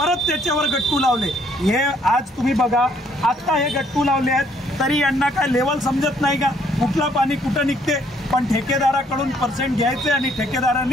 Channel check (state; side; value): normal; both; correlation 0.66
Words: त्याच्यावर गट्टू लावले। हे आज तुम्ही बघा, आता हे गट्टू लावले आहेत तरी यांना काय लेवल समजत नाही का, कुठलं पाणी कुठं निघते। पण ठेकेदाराकडून पर्सेंट घ्यायचे आणि